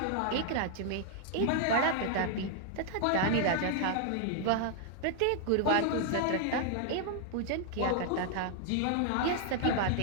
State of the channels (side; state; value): both; different; correlation 0.00